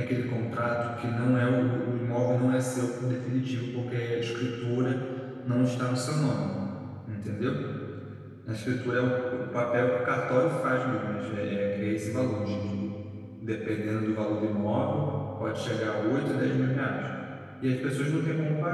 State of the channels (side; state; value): both; identical; correlation 1.00